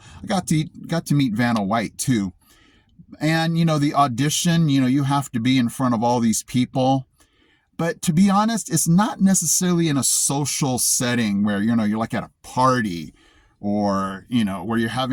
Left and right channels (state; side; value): identical; both; correlation 1.00